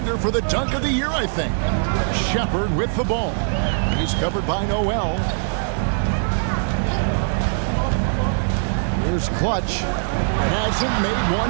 for the dunk of the year, I think. Shepard with the ball. He's covered by Noel. Here's Clutch. Hasn't made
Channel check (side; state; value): left; silent; 65 dB below the other